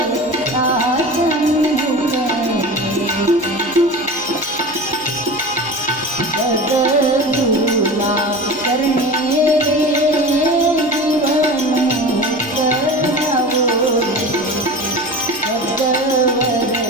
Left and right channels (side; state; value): right; noise; hum, 26 dB below the sound